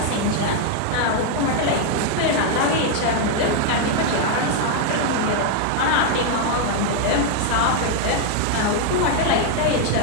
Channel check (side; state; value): both; different; correlation 0.00